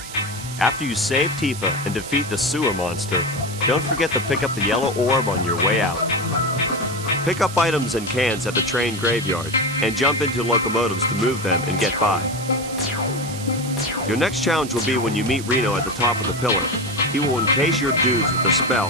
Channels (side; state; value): right; noise; hiss, 12 dB below the sound